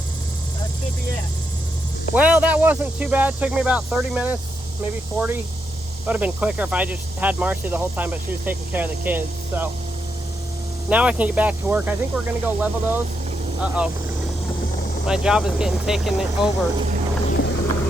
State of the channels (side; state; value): both; normal; correlation 0.81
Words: That should be it. Well, that wasn't too bad. It took me about 30 minutes, maybe 40. Would have been quicker if I just had Marcy the whole time, but she was taking care of the kids. So now I can get back to work. I think we're gonna go level those. Uh-oh. My job is getting taken over.